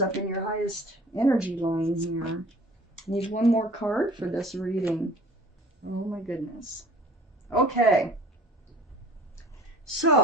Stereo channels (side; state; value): both; normal; correlation 0.47